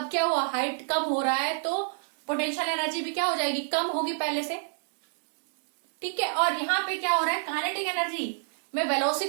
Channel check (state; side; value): silent; left; digital silence